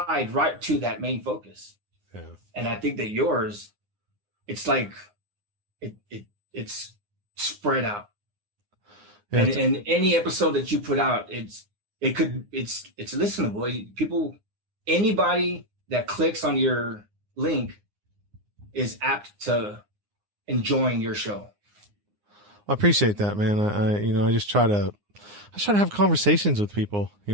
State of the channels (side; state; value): left; late; 9.7 ms